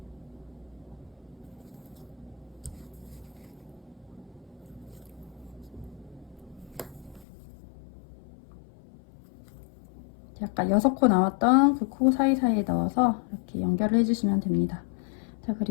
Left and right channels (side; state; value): right; drops out; at 7.2 s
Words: 약간 6코 나왔던 그 코 사이사이에 넣어서 이렇게 연결을 해주시면 됩니다. 자,